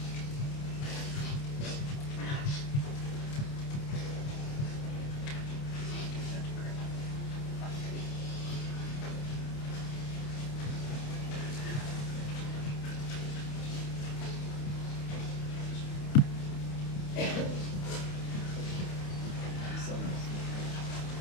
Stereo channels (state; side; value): late; right; 28 ms